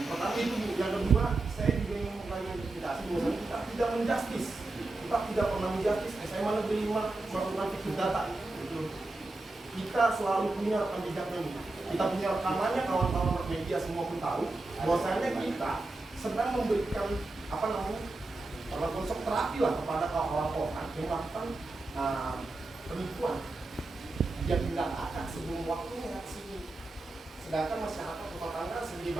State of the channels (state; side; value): quieter; left; 3.0 dB